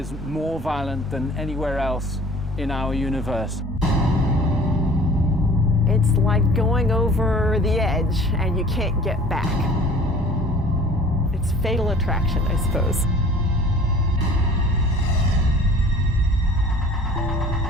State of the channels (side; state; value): both; normal; correlation 0.47